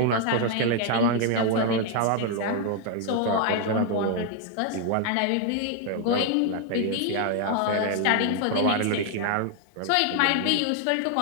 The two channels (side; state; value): both; different; correlation 0.00